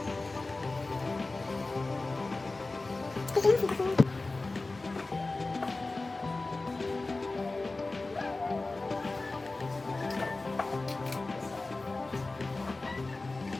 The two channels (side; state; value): right; quieter; 3.3 dB